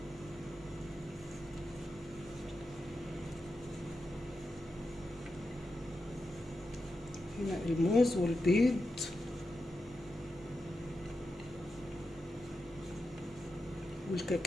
هنا الموز والبيض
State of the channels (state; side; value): normal; both; correlation 0.89